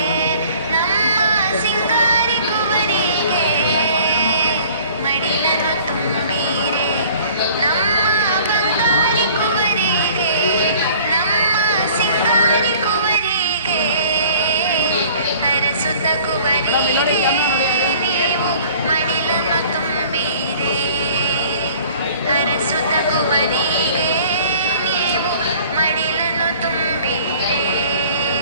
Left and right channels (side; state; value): both; inverted; correlation -0.51